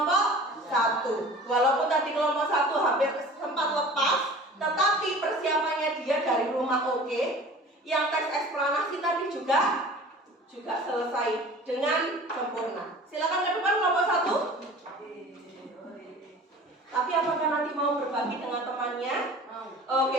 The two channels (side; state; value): both; normal; correlation 0.43